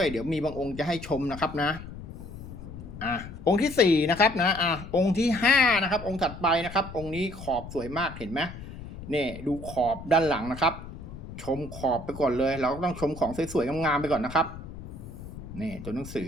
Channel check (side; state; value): left; noise; rumble, 12 dB below the sound